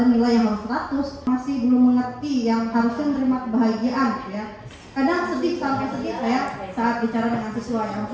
nilai yang harus 100. Masih belum mengerti yang harusnya menerima kebahagiaan ya. Kadang sedih sampai sedih saya saat bicara dengan siswa yang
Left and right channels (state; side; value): identical; both; correlation 1.00